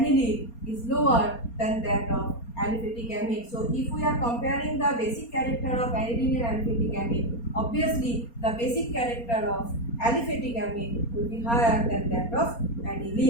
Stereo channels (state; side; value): late; right; 4.3 ms